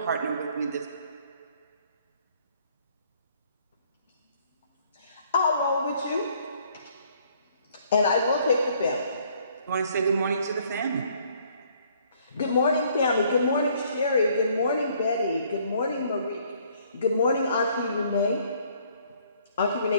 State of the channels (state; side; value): inverted; both; correlation -0.63